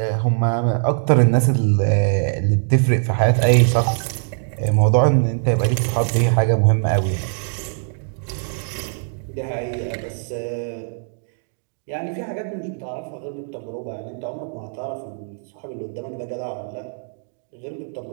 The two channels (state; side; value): silent; left; digital silence